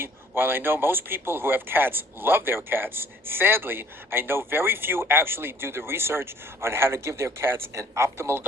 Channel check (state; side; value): normal; both; correlation 0.57